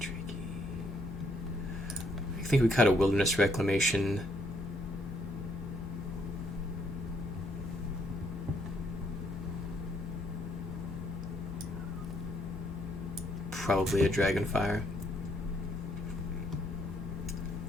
I think we cut a Wilderness Reclamation. Probably a Dragonfire.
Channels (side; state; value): both; normal; correlation 0.70